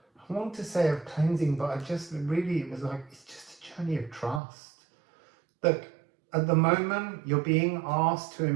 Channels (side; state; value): left; drops out; at 4.4 s